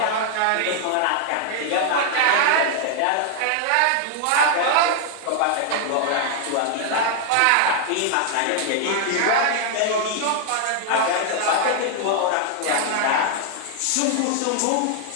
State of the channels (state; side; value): different; both; correlation 0.00